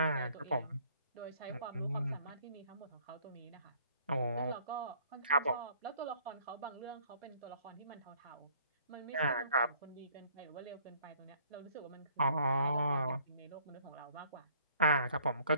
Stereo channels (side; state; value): both; inverted; correlation -0.59